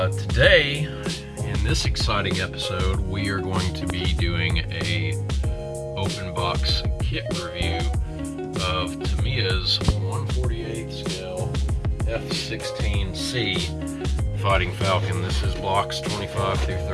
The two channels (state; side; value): identical; both; correlation 1.00